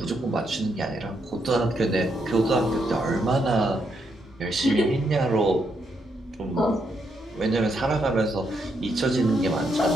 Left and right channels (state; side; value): normal; both; correlation 0.78